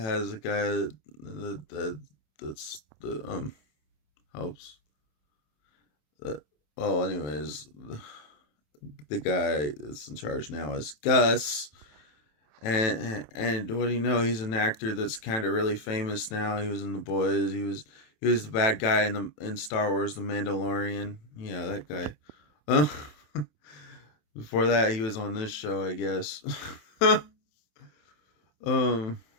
a guy that's the helps. Well, anyways, the guy that's in charge now is Gus. And what do you know? He's an actor that's kind of really famous now. He was in The Boys. He was the bad guy in Star Wars: The Mandalorian. Yeah, that guy. Uh, Before that, he was on this show, I guess. um.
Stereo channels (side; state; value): right; late; 27 ms